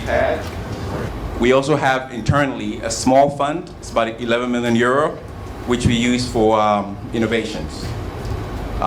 had. We also have internally a small fund, it's about 11 million euro, which we use for innovations.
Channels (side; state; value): both; identical; correlation 1.00